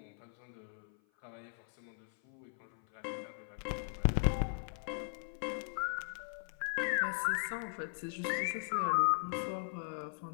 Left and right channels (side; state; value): right; silent; 52 dB below the other